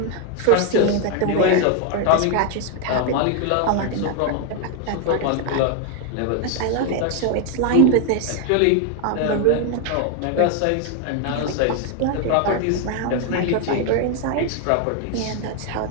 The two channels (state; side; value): different; both; correlation 0.01